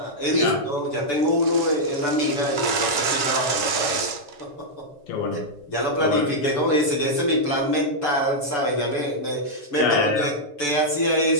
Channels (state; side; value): late; right; 6.9 ms